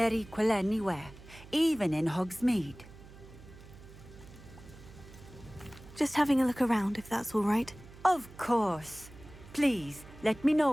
equal anywhere, even in Hogsmeade. Just having a look around, if that's all right. Of course. Please, let me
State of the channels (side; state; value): right; noise; hum, 19 dB below the sound